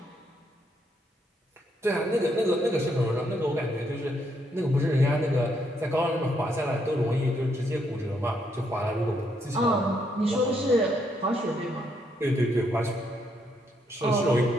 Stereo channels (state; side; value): normal; both; correlation 0.75